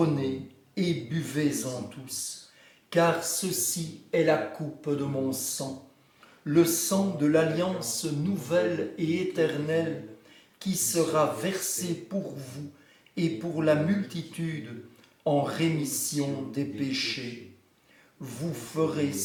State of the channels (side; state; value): both; identical; correlation 1.00